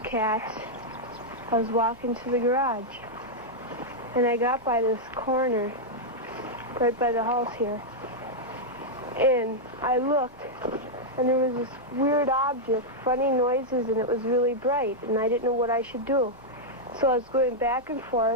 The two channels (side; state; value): both; normal; correlation -0.04